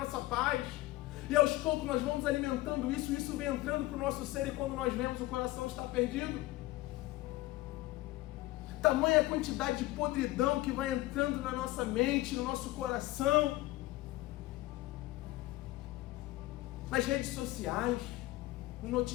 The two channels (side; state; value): right; quieter; 18.2 dB